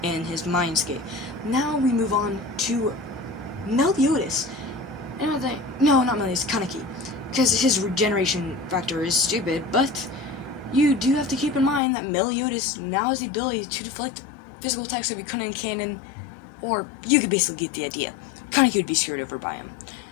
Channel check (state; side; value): drops out; right; at 11.8 s